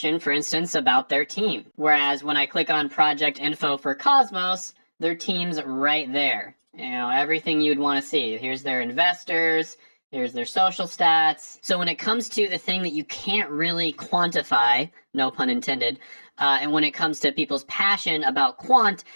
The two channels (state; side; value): inverted; both; correlation -1.00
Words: for instance, about their team. Whereas when I click on project info for Cosmos, their team's right there. You know, everything you'd want to see. Here's their investors, here's their social stats. So when it comes to the thing that you can't really quantify, no pun intended, and when it comes to people's passion about Quant,